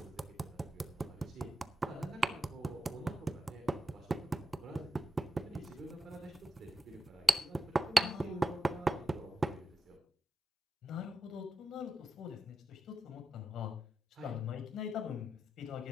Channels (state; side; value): normal; both; correlation 0.89